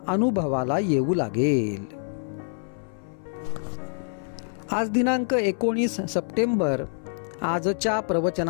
अनुभवाला येऊ लागेल. आज दिनांक 19 सप्टेंबर. आजच्या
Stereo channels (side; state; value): right; silent; 61 dB below the other